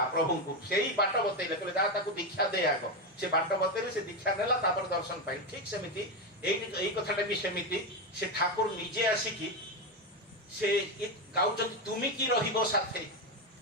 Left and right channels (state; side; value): normal; both; correlation 0.11